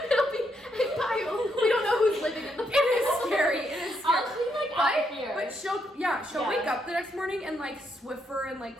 be a pile. We don't know who's living in the pile. It is scary. It is scary. I'll clean like out here. But she'll Yeah. wake up the next morning and like Swiffer and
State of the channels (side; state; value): both; normal; correlation 0.77